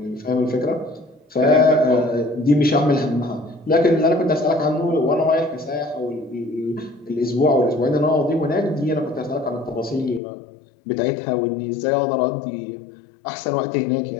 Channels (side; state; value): right; drops out; at 10.2 s